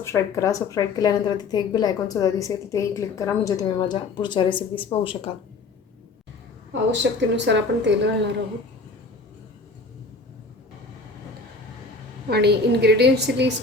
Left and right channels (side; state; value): right; quieter; 3.8 dB